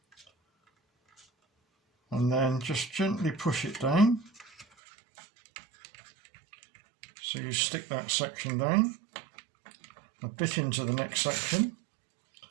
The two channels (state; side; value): drops out; left; at 4.7 s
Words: and then just gently push it down so you stick that section down a bit into the next section,